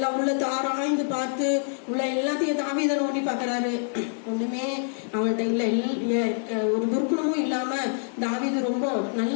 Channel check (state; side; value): silent; right; 61 dB below the other